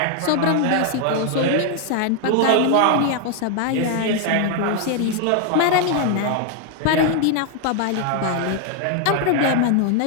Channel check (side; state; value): both; different; correlation 0.00